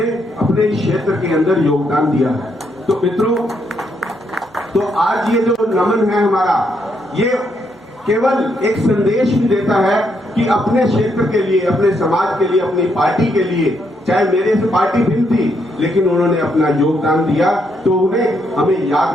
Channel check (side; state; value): both; normal; correlation 0.76